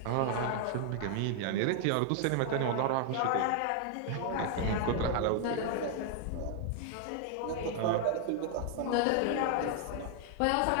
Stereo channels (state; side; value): different; both; correlation 0.00